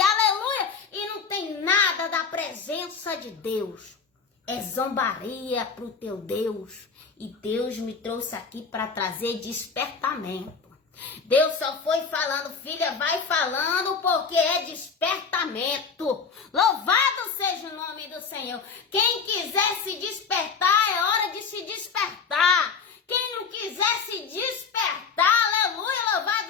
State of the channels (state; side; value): quieter; right; 5.6 dB